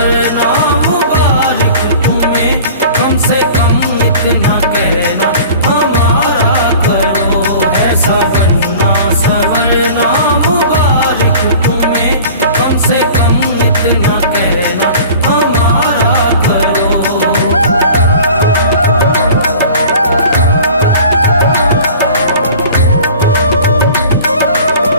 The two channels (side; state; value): both; inverted; correlation -0.43